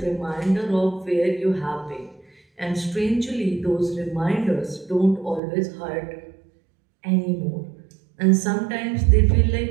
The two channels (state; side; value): drops out; left; at 5.4 s